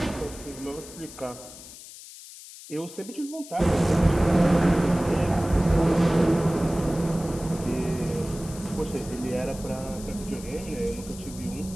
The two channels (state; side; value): noise; left; hiss, 16 dB below the sound